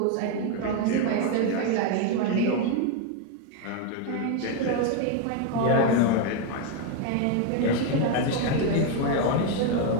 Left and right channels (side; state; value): both; different; correlation 0.02